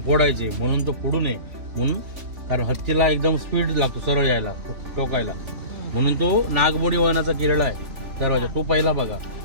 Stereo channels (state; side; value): late; left; 3.5 ms